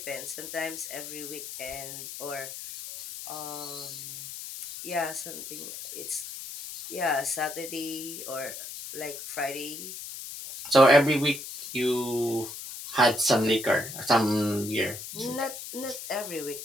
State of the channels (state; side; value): noise; left; hiss, 9 dB below the sound